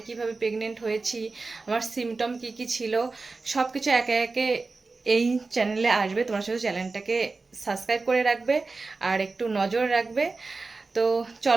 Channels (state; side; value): quieter; left; 3.9 dB